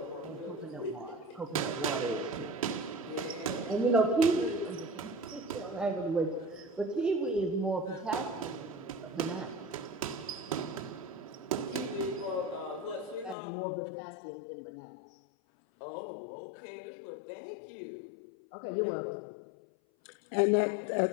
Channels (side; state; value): right; drops out; at 13.4 s